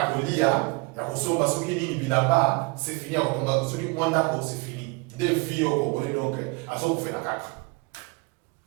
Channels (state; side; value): quieter; left; 28.0 dB